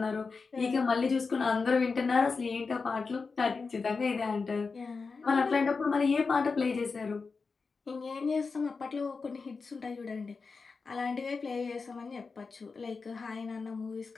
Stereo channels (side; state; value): right; quieter; 4.6 dB